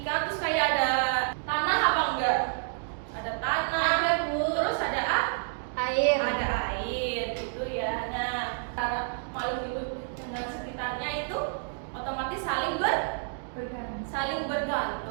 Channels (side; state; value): left; silent; digital silence